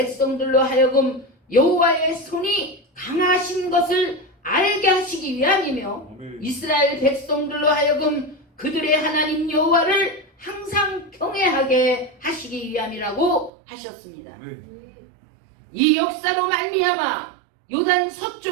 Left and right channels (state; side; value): drops out; left; at 13.5 s